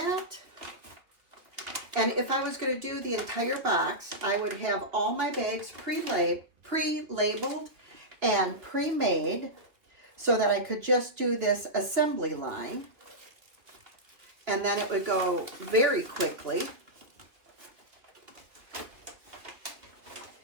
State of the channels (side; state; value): left; late; 2.7 ms